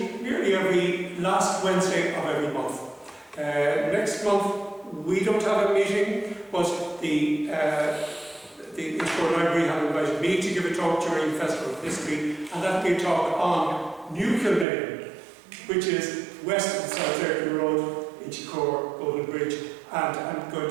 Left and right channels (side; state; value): left; drops out; at 14.7 s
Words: nearly every last Wednesday of every month. Next month we don't have a meeting, but the Inchcore Library have invited me to give a talk during the Festival of History, and that will be a talk on New Kilmainham, which is west of South Ayrton Road, Inchcore, Golden Bridge, and I'm going